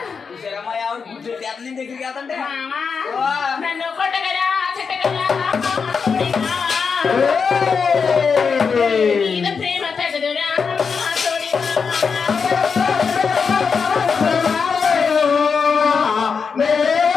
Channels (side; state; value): right; quieter; 5.6 dB